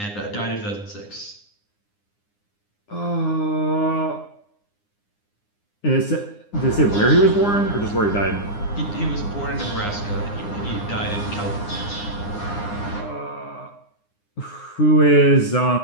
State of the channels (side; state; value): right; late; 9.8 ms